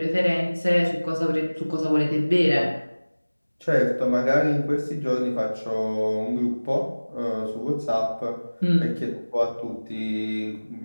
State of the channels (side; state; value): both; inverted; correlation -1.00